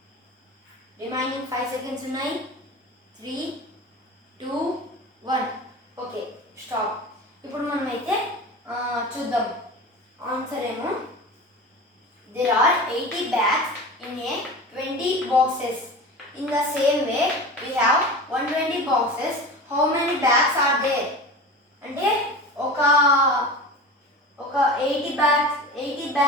రిమైనింగ్ 5 సెకండ్స్ ఉన్నాయి. 3, 2, 1 ఓకే, స్టాప్. ఇప్పుడు మనమైతే చూద్దాం ఆన్సర్ ఏమో. There are 80 bags in a 20 boxes. In the same way, we have 120 boxes. How many bags are there? అంటే ఒక 80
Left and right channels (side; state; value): both; normal; correlation 0.33